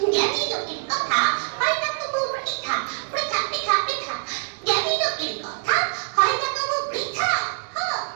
জ্ঞানী লোকের কথা হয় না তবু বৃথা, বৃথা বৃথা বৃথা। জ্ঞানী লোকের কথা হয় না তবু বৃথা।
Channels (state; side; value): silent; left; digital silence